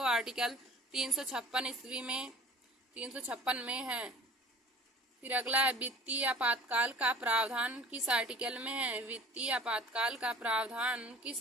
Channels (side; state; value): both; normal; correlation 0.45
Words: आर्टिकल 356 में है। फिर अगला है वित्तीय आपातकाल का प्रावधान किस आर्टिकल में है। वित्तीय आपातकाल का प्रावधान